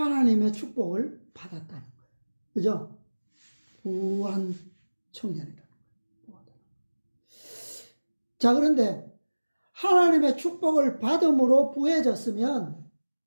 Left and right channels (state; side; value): inverted; both; correlation -1.00